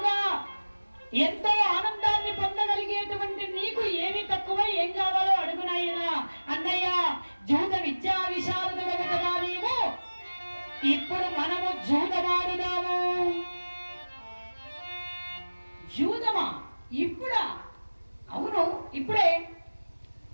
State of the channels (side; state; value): both; inverted; correlation -1.00